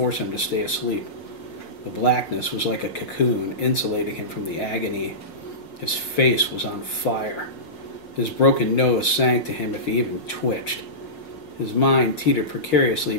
him to stay asleep. The blackness was like a cocoon, insulating him from the agony. His face was on fire. His broken nose sank to him if he even twitched. His mind teetered precariously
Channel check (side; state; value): right; late; 6.0 ms